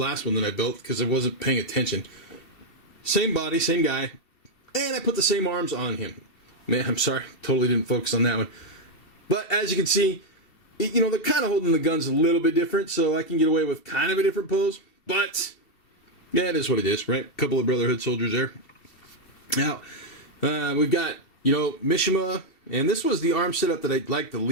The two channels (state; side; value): late; right; 2.7 ms